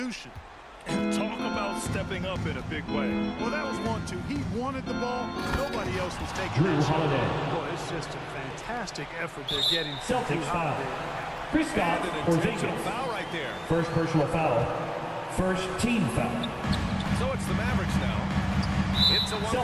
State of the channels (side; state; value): both; identical; correlation 1.00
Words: And talk about stepping up in a big way. Well, that was 1-2. He wanted the ball. Nobody else was taking Drew that shot. Holiday. Boy, it's just a fantastic effort they're getting. Celtics from foul. Holiday. Kristaps And an intentional Porzingis. foul right there. First personal foul. First team foul. So it's the Mavericks now. It's a 1-point